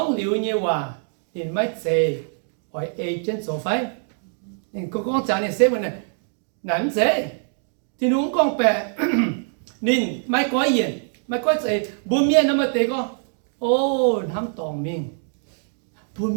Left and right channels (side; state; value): left; silent; 63 dB below the other